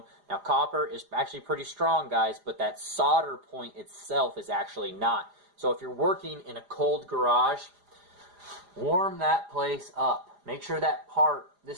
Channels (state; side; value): late; left; 4.9 ms